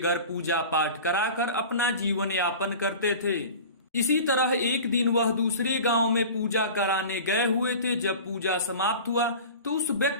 पूजा पाठ कराकर अपना जीवन यापन करते थे। इसी तरह एक दिन वह दूसरे गांव में पूजा कराने गए हुए थे। जब पूजा समाप्त हुआ तो उस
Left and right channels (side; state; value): both; inverted; correlation -0.37